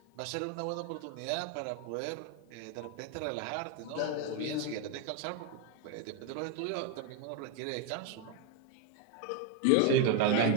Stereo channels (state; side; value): different; both; correlation 0.01